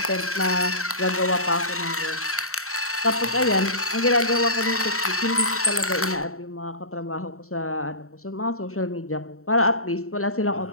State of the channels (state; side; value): late; right; 0.64 ms